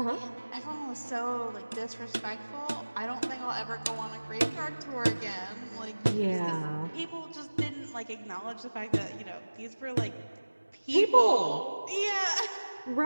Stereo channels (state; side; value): inverted; both; correlation -1.00